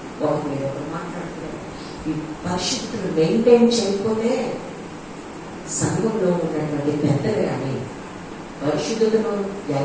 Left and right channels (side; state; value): both; identical; correlation 1.00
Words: ఒకరి మీద ఒకరు మాట్లాడుతున్నారు. ఈ పరిశుద్ధులు మెయింటైన్ చేయకపోతే సంఘంలో ఉన్నటువంటి పెద్దలు కానీ పరిశుద్ధతను